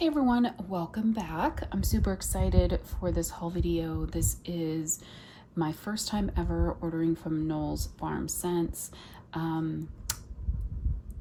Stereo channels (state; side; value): identical; both; correlation 1.00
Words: everyone, welcome back. I'm super excited for this haul video. This is my first time ever ordering from Knowles Farm Scents.